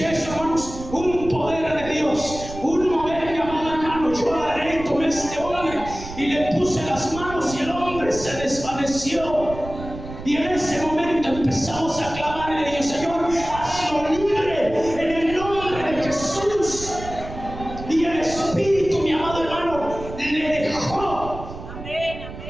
eso, hermanos, un poder de Dios, un mover, mi amado hermano, yo agarré, tomé a este hombre y le puse las manos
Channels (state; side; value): noise; right; rumble, 12 dB below the sound